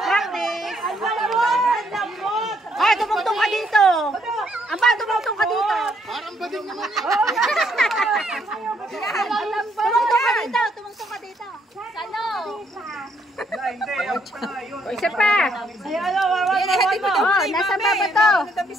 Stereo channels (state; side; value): normal; both; correlation 0.71